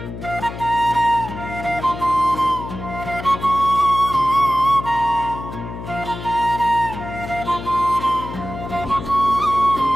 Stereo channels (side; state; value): left; noise; hum, 10 dB below the sound